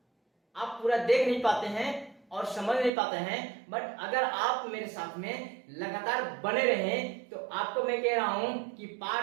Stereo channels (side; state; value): left; drops out; at 2.9 s